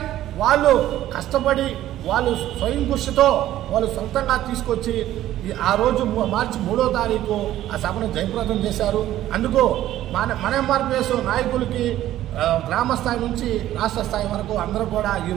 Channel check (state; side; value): quieter; left; 13.4 dB